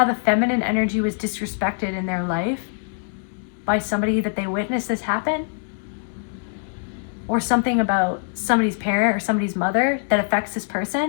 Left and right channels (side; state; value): right; silent; 63 dB below the other